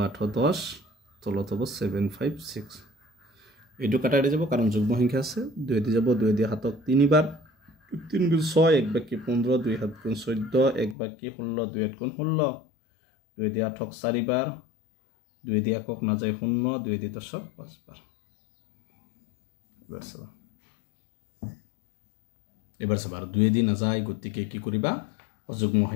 810 তলত হ'ব 756 এটো কাটা দি যাব কাৰণ যুগ্ম সংখ্যা আছে 2 দি যাব 2 দি হাতক তিনিবাৰ 3 গুণ 6 1 বাকি 15 2 7 গুণ 14 1 বাকি 16 2 8 গুণ 16 2 দি 8 4 বাৰ 2 দি একক না যায় 0 2 দি 10 5 বাৰ এবাৰ সবা 2 দি না যায় গতিকে কি কৰিবা অযুগ্ম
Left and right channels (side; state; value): right; drops out; at 11.0 s